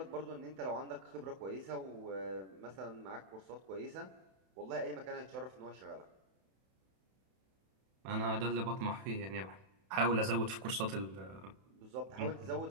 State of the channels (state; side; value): late; left; 31 ms